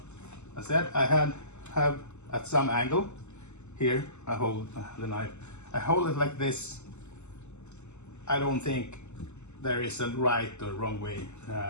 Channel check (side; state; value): right; late; 0.83 ms